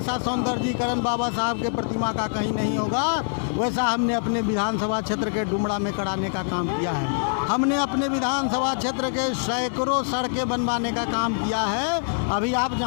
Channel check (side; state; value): right; silent; 62 dB below the other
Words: सौंदर्यीकरण बाबा साहब के प्रतिमा का कहीं नहीं होगा, वैसा हमने अपने विधानसभा क्षेत्र के डुमरा में कराने का काम किया है। हमने अपने विधानसभा क्षेत्र के सैकड़ों सड़कें बनवाने का काम किया है। अभी आप